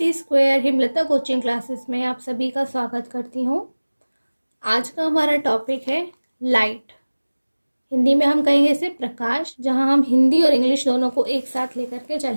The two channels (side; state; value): both; inverted; correlation -1.00